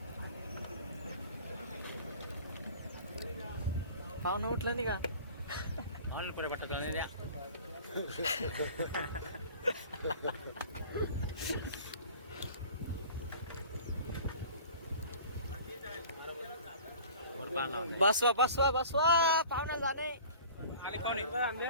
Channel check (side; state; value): both; inverted; correlation -0.44